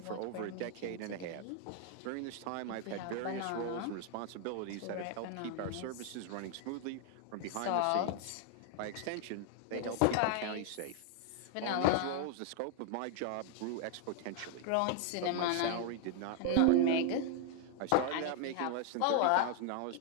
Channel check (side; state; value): both; different; correlation 0.00